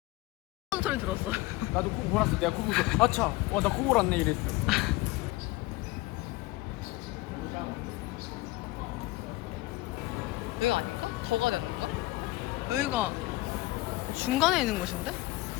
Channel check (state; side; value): quieter; right; 20.0 dB